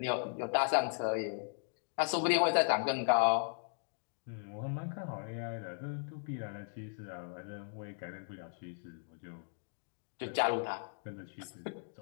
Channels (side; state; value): right; silent; digital silence